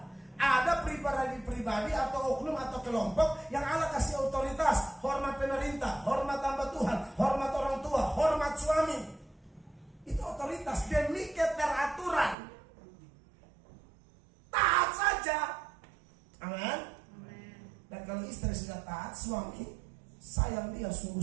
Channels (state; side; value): drops out; left; at 12.4 s